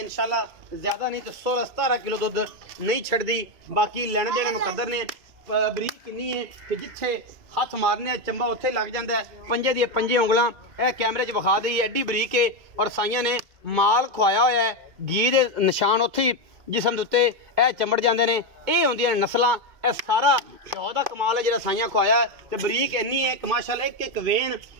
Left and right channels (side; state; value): left; late; 2.2 ms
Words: इंशाल्लाह ज़्यादा नहीं तो 16-17 किलो दुध नहीं छड़दी। बाकी लेने देने मुकद्दर ने। बरीक किन्नी है कि जिथे हथ मारने चंबा उत्थे लग जाता है। पंजे दी पंजे उंगलां यह कैमरे च विखा दी एडी बरीक है और साइयां ने माल खुआया होया है। घी दे निशान उत्थे जिसम दे उत्ते यह चमड़ जाते हैं। ये होंदियां नस्लां। यह सारा शौ का कमाल है जो साइयां खुआया है। तो बरीक इन्नी है कि माशाल्लाह एक एक वेन